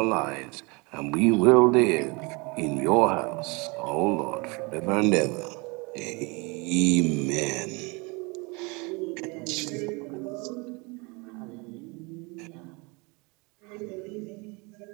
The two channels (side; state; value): left; quieter; 28.4 dB